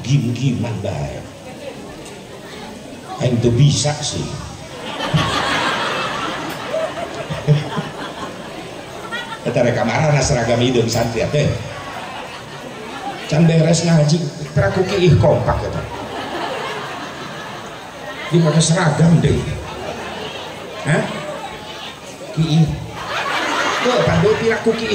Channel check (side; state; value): both; identical; correlation 1.00